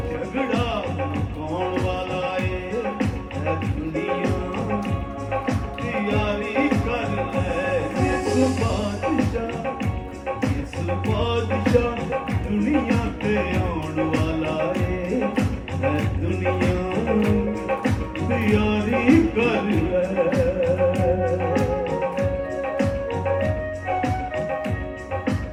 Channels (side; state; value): both; identical; correlation 1.00